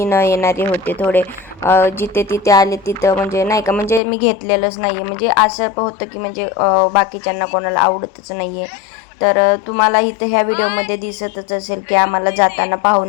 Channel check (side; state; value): right; drops out; at 4.0 s